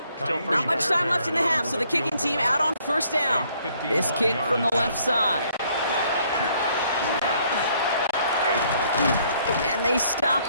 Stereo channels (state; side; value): inverted; both; correlation -0.66